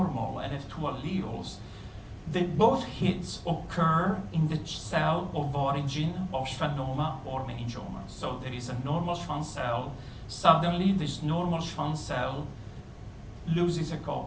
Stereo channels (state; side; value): identical; both; correlation 1.00